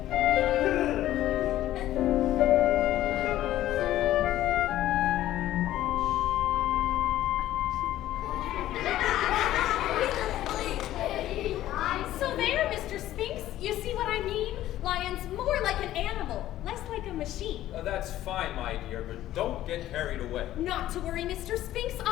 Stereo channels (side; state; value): right; quieter; 13.7 dB